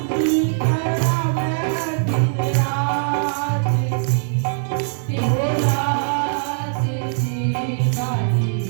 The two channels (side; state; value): left; silent; 65 dB below the other